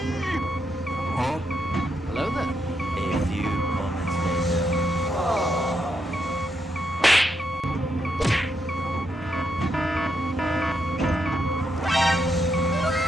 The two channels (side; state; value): both; normal; correlation 0.81